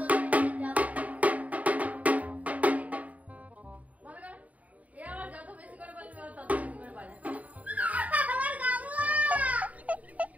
যাবো। মনে করো, এ আমার যত বেশি করে বলবে ও তত বেশি করে বাজায়। আমার গামলা।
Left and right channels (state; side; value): late; left; 0.070 ms